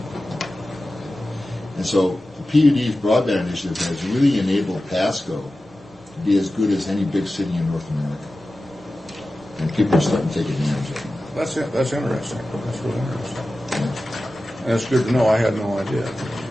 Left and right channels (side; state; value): both; normal; correlation 0.95